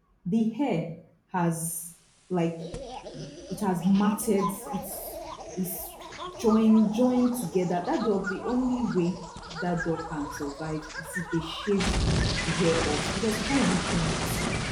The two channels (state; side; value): identical; both; correlation 1.00